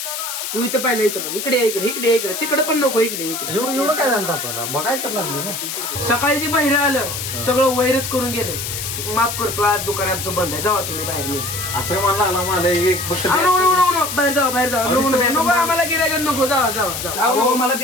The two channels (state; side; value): noise; left; hiss, 5 dB below the sound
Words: तू इथं पहिला इथं इकडे इकडे इकडे इकडे तिकडे पण नको इकडे इकडे. एवढं काय झालं तापाला बघायला तर लागलं ना. सकाळी ते बाहेर आलं सगळं वैरच करून गेलं. माफ करतो आज दुकान आमचं बंद आहे जावा तुम्ही बाहेर नाही. असं मला लागला मला एक फक्त बाहेर जावा बाहेर जावा नको आम्हाला गिरायला नको जावा जावा. मला